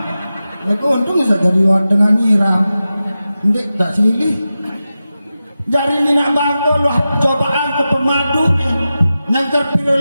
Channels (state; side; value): inverted; both; correlation -0.93